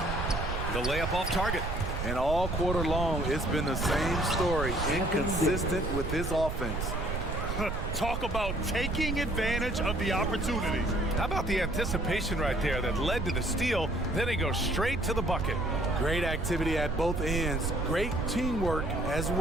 The layup off target. And all quarter long, it's been the same story. Inconsistent with his offense. Talk about taking advantage of the opportunities. How about the anticipation right there that led to the steal? Then he goes straight to the bucket. Great activity at both ends. Great teamwork as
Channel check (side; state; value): right; noise; rumble, 3 dB below the sound